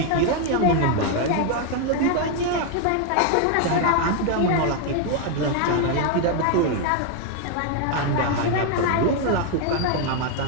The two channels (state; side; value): different; both; correlation 0.01